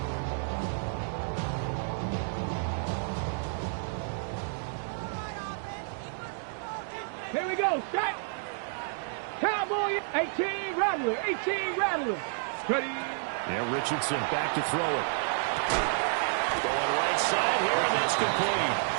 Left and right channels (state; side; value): silent; left; digital silence